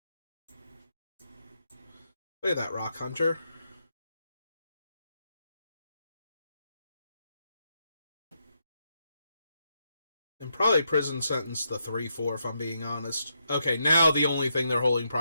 Look at that Rock Hunter. And probably prison sentence the 3/4 if I'm being honest. Okay, now the only thing they're holding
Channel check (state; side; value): inverted; both; correlation -0.81